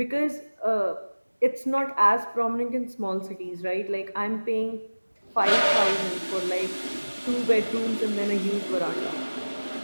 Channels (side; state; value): both; inverted; correlation -1.00